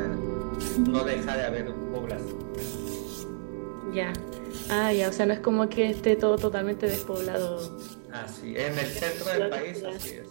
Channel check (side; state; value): left; silent; digital silence